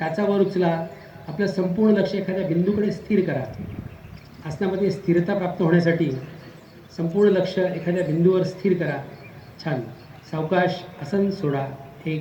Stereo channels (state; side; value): identical; both; correlation 1.00